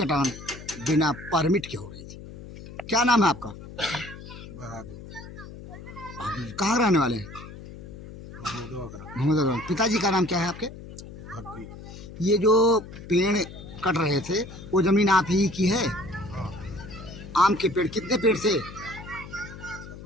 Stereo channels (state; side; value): noise; left; hum, 14 dB below the sound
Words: बिना परमिट के हो रही थी। क्या नाम है आपका? बहादुर। कहाँ रहने वाले हैं? महमूदवा। पिताजी का नाम क्या है आपके? ये जो पेड़ कट रहे थे वो जमीन आप ही की है? आम के पेड़ कितने पेड़ से?